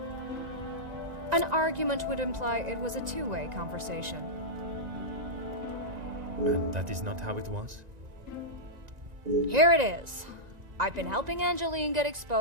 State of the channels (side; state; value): left; late; 1.9 ms